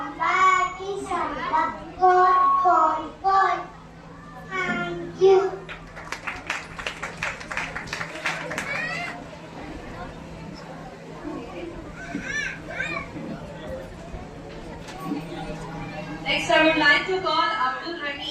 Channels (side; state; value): both; identical; correlation 1.00